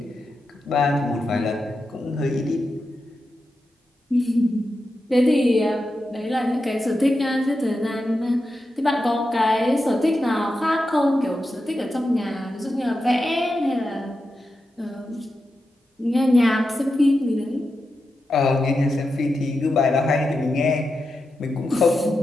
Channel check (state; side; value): normal; both; correlation 0.89